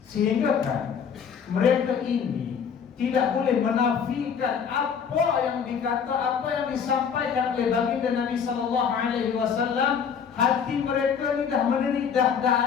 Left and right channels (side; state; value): right; quieter; 7.0 dB